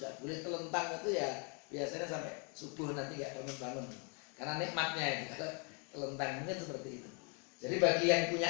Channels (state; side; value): quieter; right; 35.9 dB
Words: boleh telentang itu ya biasanya sampai subuh nanti nggak bangun-bangun. Karena nikmatnya itu, kalau telentang mungkin seperti itu. Jadi bagi yang